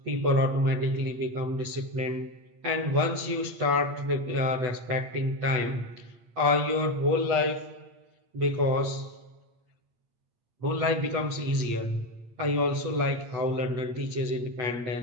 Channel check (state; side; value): late; left; 8.1 ms